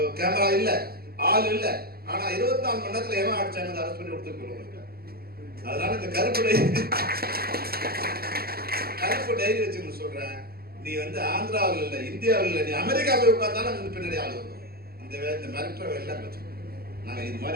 கேமரா இல்லை, ஆள் இல்லை, ஆனா 24 மணி நேரத்தில் எவன் அடிச்சாங்க அரெஸ்ட் பண்ணி கொடுத்துருக்கோம். அதனால இந்த கருப்பு டைரி வச்சுன்னு சொல்றேன், நீ வந்து ஆந்திராவில் இல்லை, இந்தியாவில் இல்லை, நீ அமெரிக்கா போய் உட்கார்ந்தாலும் அங்கே பின்னாடி ஆள் வரும். இந்த மிரட்டுற எல்லாம் வச்சு நாங்கள் இது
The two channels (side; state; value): left; late; 0.45 ms